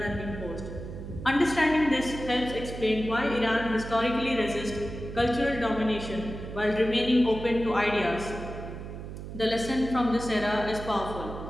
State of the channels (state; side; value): noise; right; hum, 10 dB below the sound